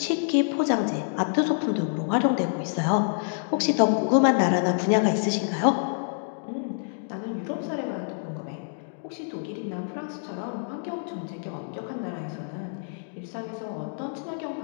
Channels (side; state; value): right; silent; digital silence